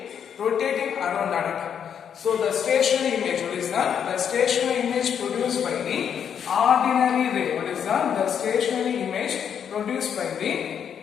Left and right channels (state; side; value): quieter; right; 8.1 dB